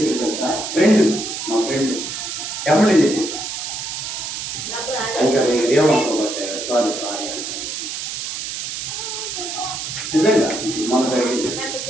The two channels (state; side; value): noise; right; hiss, 5 dB below the sound